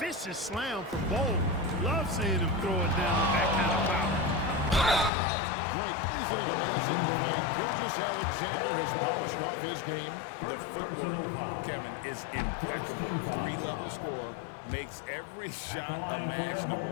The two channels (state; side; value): drops out; right; at 5.1 s